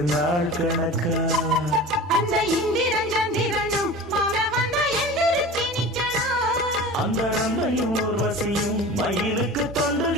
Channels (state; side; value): normal; both; correlation 0.35